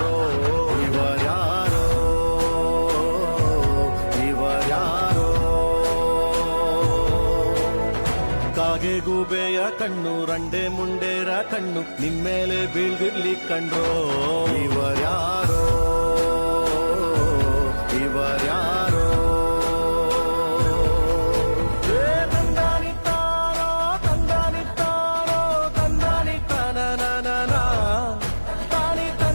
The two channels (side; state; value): both; inverted; correlation -1.00